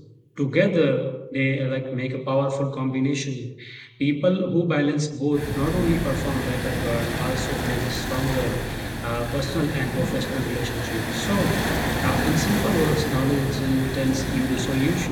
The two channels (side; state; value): both; identical; correlation 1.00